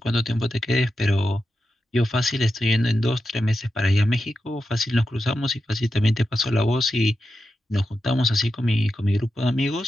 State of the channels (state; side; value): normal; both; correlation 0.89